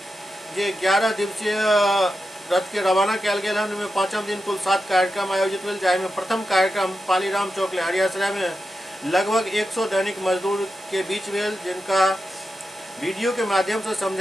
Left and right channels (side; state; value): both; normal; correlation 0.89